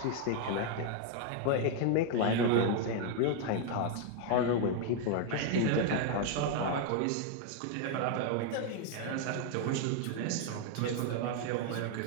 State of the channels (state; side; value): different; both; correlation 0.01